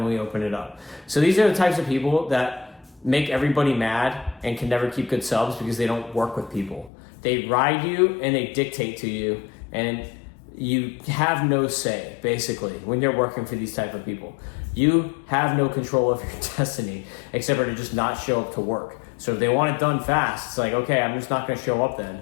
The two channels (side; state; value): right; drops out; at 6.9 s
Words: we opened it up. So these are the types of people that make everybody mad and can never keep good subs because they don't work with people. They ride you and they dictate to you, and you have no say, basically, when you're working for these type of people. You have no control of your destiny except for to just not show up to work. So if they want it done fast, it's like, okay, I'm just not going to show up